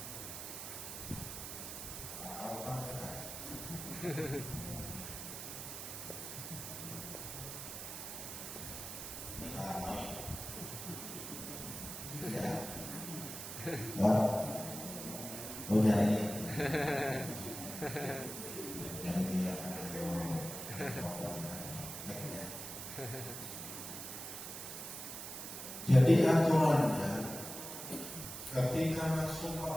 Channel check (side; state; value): right; noise; hiss, 8 dB below the sound